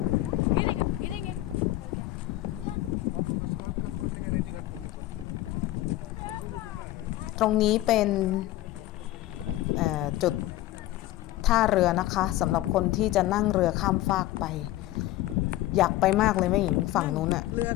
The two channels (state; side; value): quieter; right; 16.1 dB